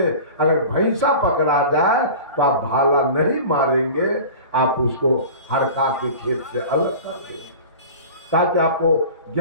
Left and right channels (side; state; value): both; inverted; correlation -0.37